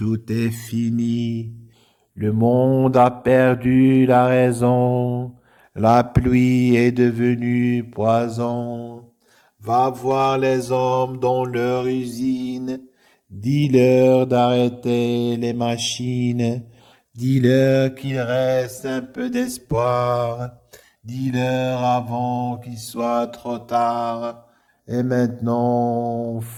est fini. Le monde a perdu la raison, la pluie est devenue poison. Va voir les hommes dans leur usine, dis-leur d'arrêter les machines, dis-leur qu'il reste un peu d'espoir, dis-leur avant qu'il soit trop tard. Et maintenant,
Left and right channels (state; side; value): identical; both; correlation 1.00